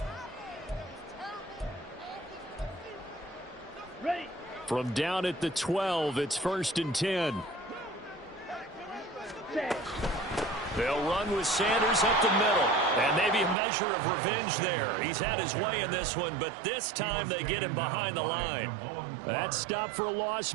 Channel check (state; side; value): drops out; left; at 13.6 s